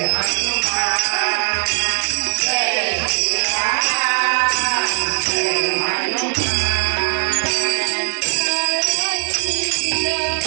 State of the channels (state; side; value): silent; left; digital silence